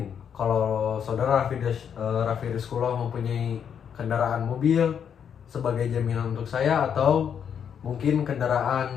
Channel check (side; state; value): right; quieter; 7.9 dB